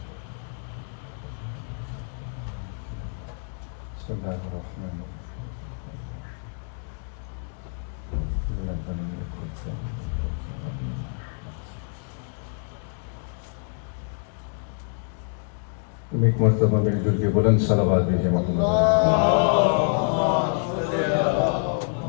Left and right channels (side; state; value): right; silent; 56 dB below the other